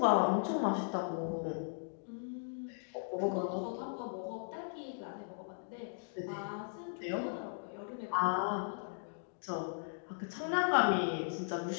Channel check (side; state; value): right; silent; digital silence